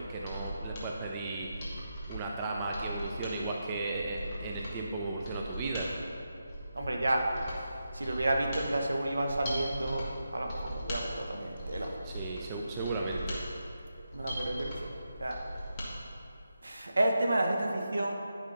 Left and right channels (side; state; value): both; inverted; correlation -0.87